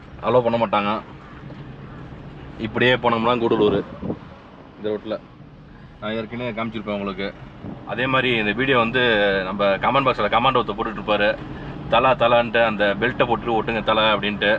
அலோவ் பண்ண மாட்டாங்க. இப்படியே போனோம்னா கூடலூர் இந்த ரோட்டில் நான் ஏற்கனவே காமிச்சிருப்பேன் உங்களுக்கு. அதே மாதிரி இந்த வீடியோ வந்து நம்ம கமெண்ட் பாக்ஸில் கமெண்ட் ஒருத்தர் போட்டுட்ருப்பார், தலான்ட்டு அந்த பெல்ட்டை போட்டு ஒட்டுங்க தலை அப்படின்ட்டு.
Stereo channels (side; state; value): both; identical; correlation 1.00